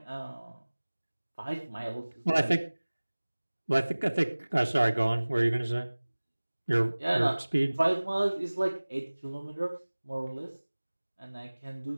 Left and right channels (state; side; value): inverted; both; correlation -1.00